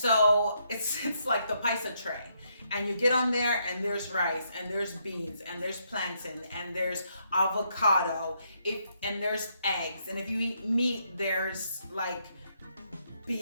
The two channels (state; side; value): inverted; both; correlation -0.75